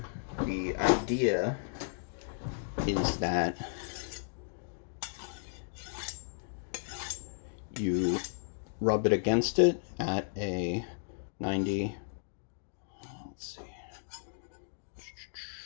idea is that you rub it against it at a 90, let's see,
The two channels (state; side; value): silent; right; digital silence